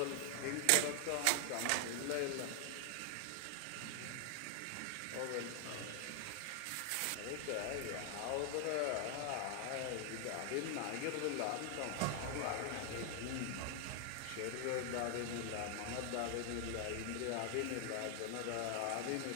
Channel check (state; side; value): different; both; correlation 0.00